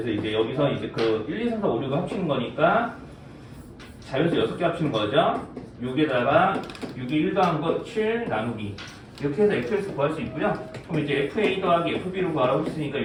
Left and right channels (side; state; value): both; identical; correlation 1.00